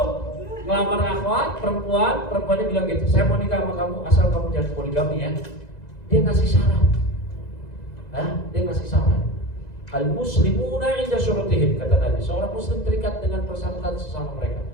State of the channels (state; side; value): late; right; 2.0 ms